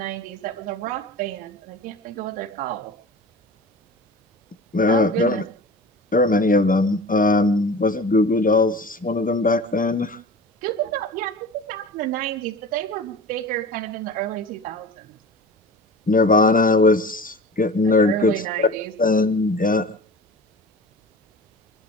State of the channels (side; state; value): both; normal; correlation 0.37